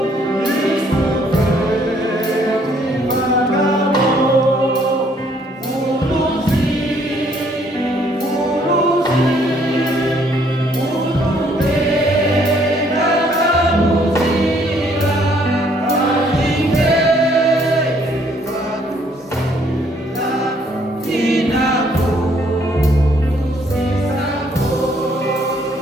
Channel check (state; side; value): normal; both; correlation 0.65